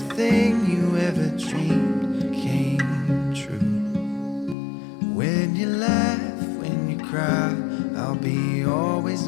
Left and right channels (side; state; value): right; drops out; at 4.5 s